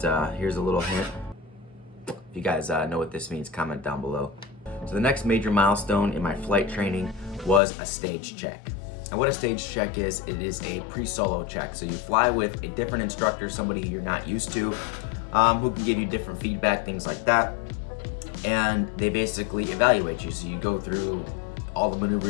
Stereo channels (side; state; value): right; drops out; at 7.6 s